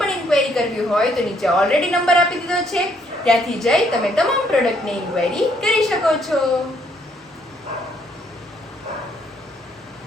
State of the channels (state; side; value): normal; both; correlation 0.69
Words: પણ ઇન્ક્વાયરી કરવી હોય તો નીચે ઓલરેડી નંબર આપી દીધો છે, ત્યાંથી જઈ તમે તમામ પ્રોડક્ટની ઇન્ક્વાયરી કરી શકો છો.